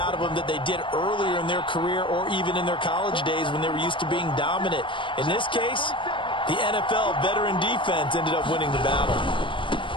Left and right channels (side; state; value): right; late; 0.24 ms